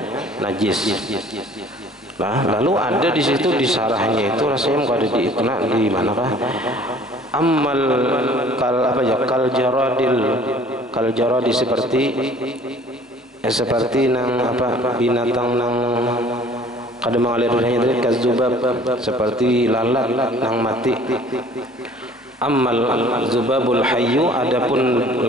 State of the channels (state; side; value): normal; both; correlation 0.52